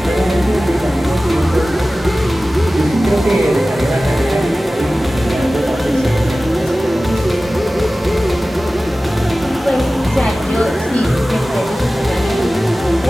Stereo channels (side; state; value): both; normal; correlation 0.96